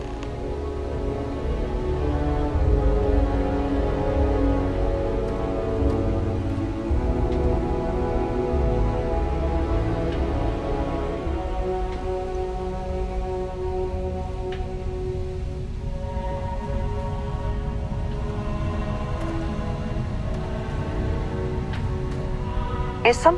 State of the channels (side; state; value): both; identical; correlation 1.00